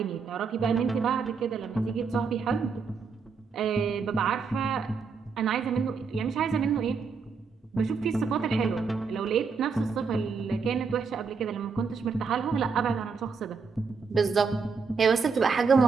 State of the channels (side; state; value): left; quieter; 5.2 dB